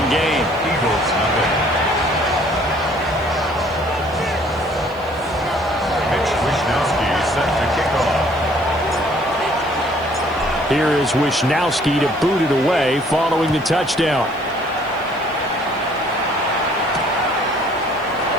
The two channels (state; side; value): noise; right; hiss, 27 dB below the sound